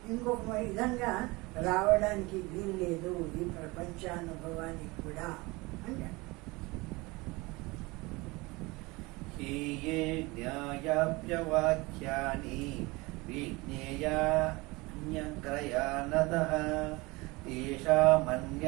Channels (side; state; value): left; quieter; 23.7 dB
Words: ఇంకొక విధంగా రావడానికి వీల్లేదు ఈ ప్రపంచానుభవానికి కూడా అంటే. హీయే జ్ఞాయాప్యవాక్యాని విజ్ఞేయాన్యగ్రయానతః